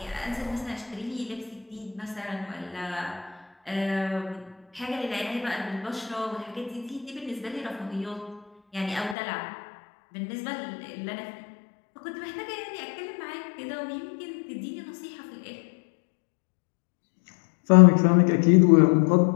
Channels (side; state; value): right; drops out; at 9.2 s